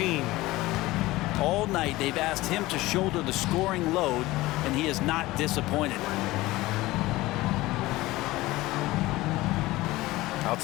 All night they've asked him to shoulder the scoring load, and he is not disappointed.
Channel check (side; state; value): right; quieter; 18.7 dB